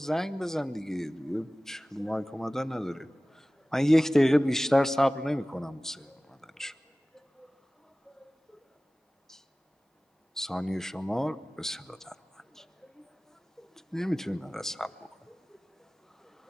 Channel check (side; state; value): both; normal; correlation 0.98